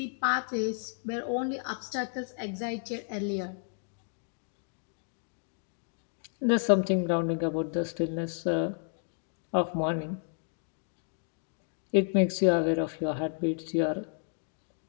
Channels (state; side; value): silent; right; 57 dB below the other